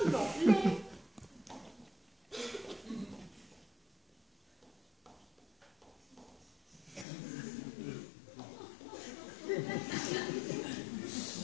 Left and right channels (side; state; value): right; drops out; at 7.1 s